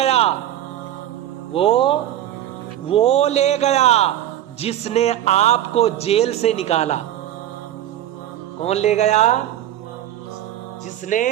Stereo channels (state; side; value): quieter; left; 12.3 dB